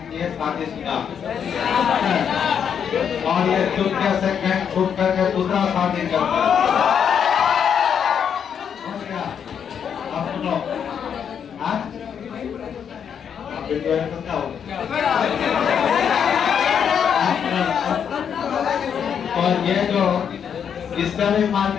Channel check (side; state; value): right; quieter; 7.8 dB